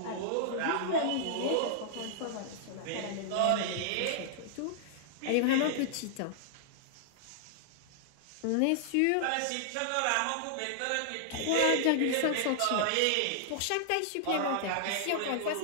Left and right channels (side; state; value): both; different; correlation -0.01